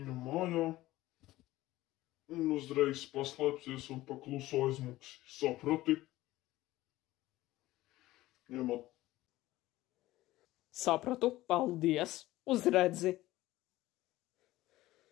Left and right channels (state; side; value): quieter; right; 16.9 dB